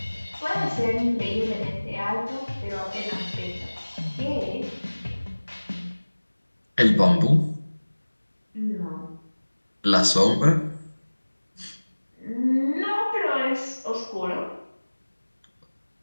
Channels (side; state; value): both; inverted; correlation -1.00